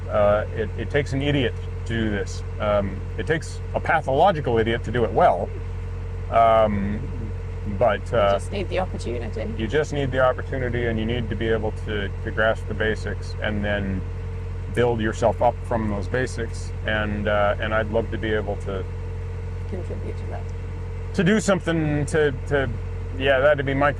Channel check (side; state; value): both; identical; correlation 1.00